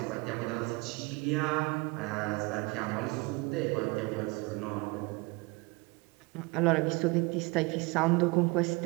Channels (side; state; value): left; quieter; 26.3 dB